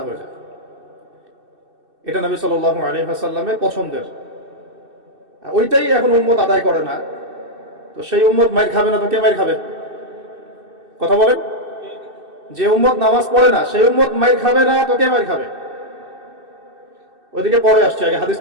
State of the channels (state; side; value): late; left; 2.6 ms